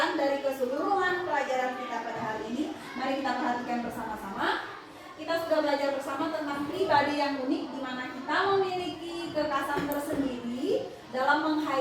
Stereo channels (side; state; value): both; identical; correlation 1.00